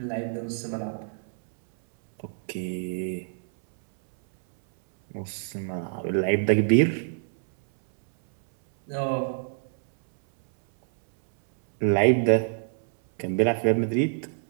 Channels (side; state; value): left; silent; 61 dB below the other